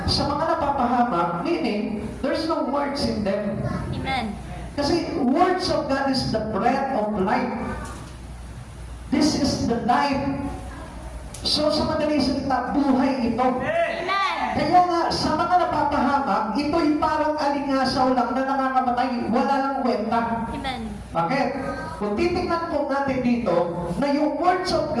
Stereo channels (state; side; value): identical; both; correlation 1.00